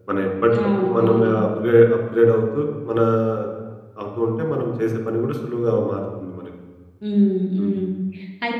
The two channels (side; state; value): both; identical; correlation 1.00